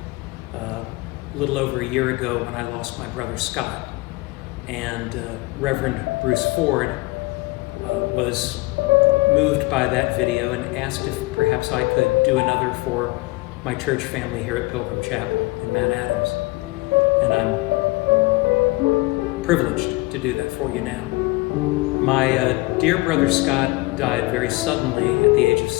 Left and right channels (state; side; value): quieter; right; 22.9 dB